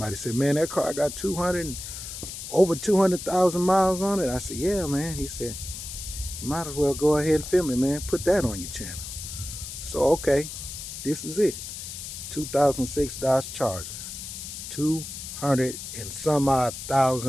said, "Man, that car got over 200,000 miles on it." I said, "Yeah, man." He said, "You might as well go ahead and film it, man. Put that on your channel." So, okay, this is it. 2006 Dodge Charger. 200 and some odd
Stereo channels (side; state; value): left; noise; hiss, 9 dB below the sound